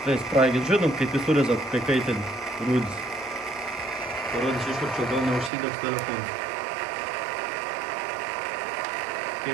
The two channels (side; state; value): left; drops out; at 5.5 s